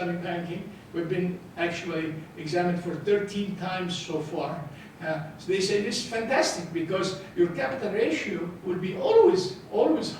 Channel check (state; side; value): identical; both; correlation 1.00